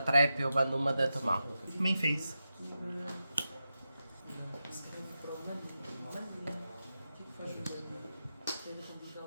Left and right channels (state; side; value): inverted; both; correlation -0.90